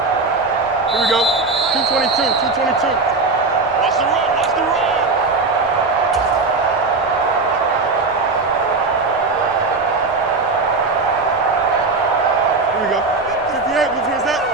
Here we go. 222, 222. Watch the run, watch the run. 58, whose is that?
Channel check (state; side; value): quieter; left; 3.8 dB